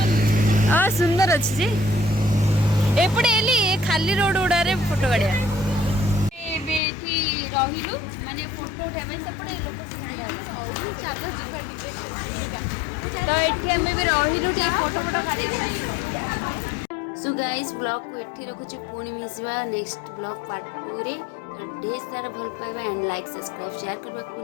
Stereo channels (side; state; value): right; drops out; at 6.8 s